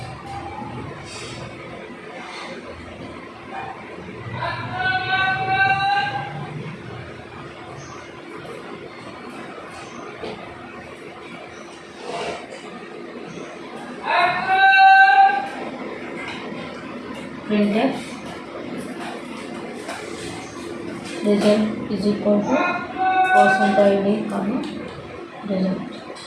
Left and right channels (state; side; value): identical; both; correlation 1.00